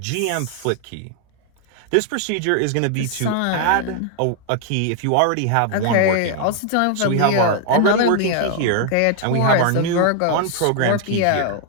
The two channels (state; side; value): different; both; correlation 0.00